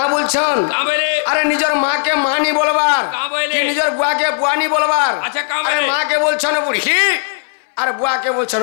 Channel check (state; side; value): silent; right; digital silence